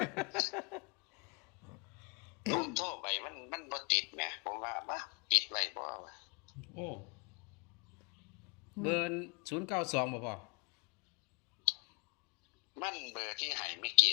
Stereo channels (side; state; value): right; quieter; 33.0 dB